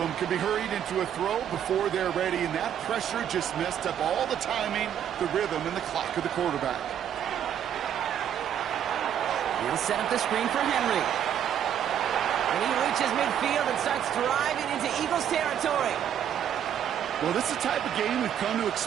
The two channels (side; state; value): left; quieter; 9.6 dB